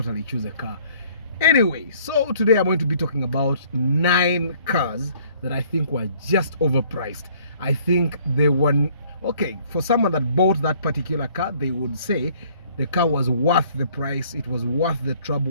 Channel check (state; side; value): inverted; both; correlation -0.58